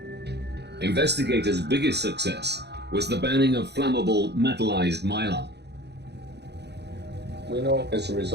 Investigators' biggest success was the banning of flammable metallized mylar. We know as a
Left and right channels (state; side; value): late; left; 0.49 ms